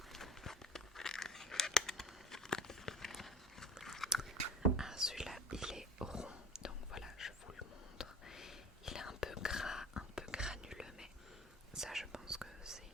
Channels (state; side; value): normal; both; correlation 0.40